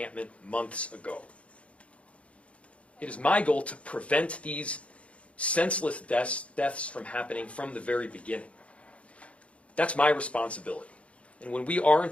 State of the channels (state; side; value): late; right; 0.062 ms